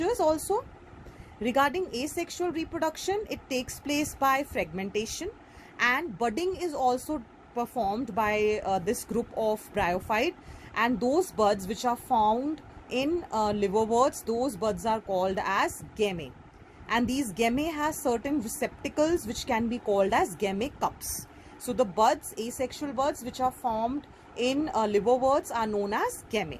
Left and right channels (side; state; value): both; identical; correlation 1.00